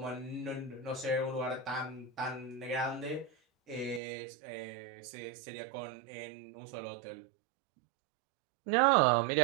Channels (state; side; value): drops out; left; at 4.0 s